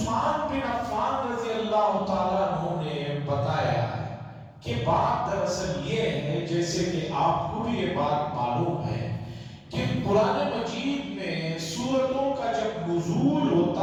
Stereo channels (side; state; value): both; identical; correlation 1.00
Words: بن عفان رضی اللہ تعالیٰ عنہ نے بتایا کہ بات دراصل یہ ہے، جیسے کہ آپ کو بھی یہ بات معلوم ہے کہ قرآن مجید میں سورتوں کا جب نزول